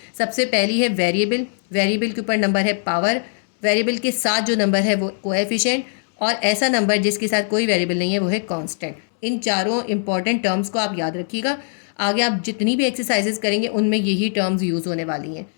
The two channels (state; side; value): silent; right; 65 dB below the other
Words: सबसे पहली है वेरिएबल, वेरिएबल के ऊपर नंबर है पावर, वेरिएबल के साथ जो नंबर है वो कोएफिशिएंट, और ऐसा नंबर जिसके साथ कोई वेरिएबल नहीं है वो है कांस्टेंट। इन चारों इंपॉर्टेंट टर्म्स को आप याद रखिएगा। आगे आप जितनी भी एक्सरसाइजेस करेंगे उनमें यही टर्म्स यूज़ होने वाली हैं